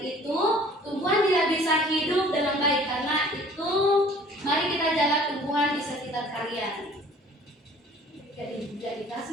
itu, tumbuhan tidak bisa hidup dengan baik. Karena itu, mari kita jaga tumbuhan di sekitar kalian. Jadi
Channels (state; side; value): normal; both; correlation 0.51